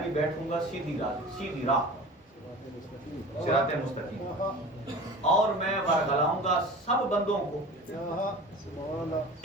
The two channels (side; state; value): both; normal; correlation 0.38